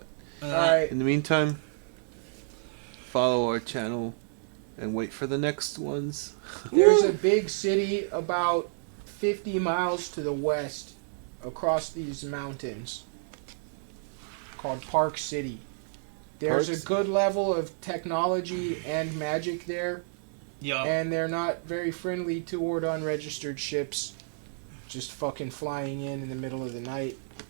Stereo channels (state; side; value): silent; left; digital silence